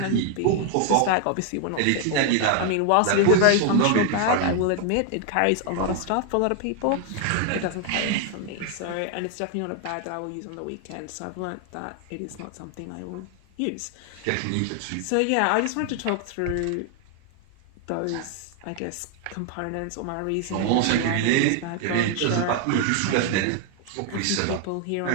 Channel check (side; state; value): both; different; correlation 0.00